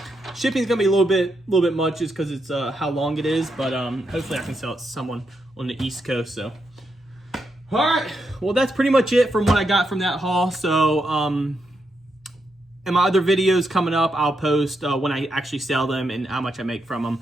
Shipping is gonna be a little bit much just because it's how long it is. But hopefully I can sell it to someone on the East Coast. So, all right. Well, that's pretty much it from what I got from that haul. So, in my other videos coming up, I'll post when I actually sell them and how much I make from them.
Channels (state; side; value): normal; both; correlation 0.82